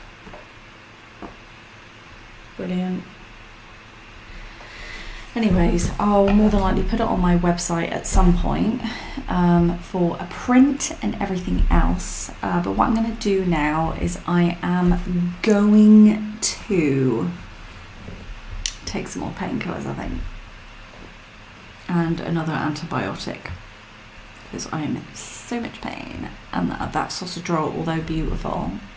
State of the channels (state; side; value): identical; both; correlation 1.00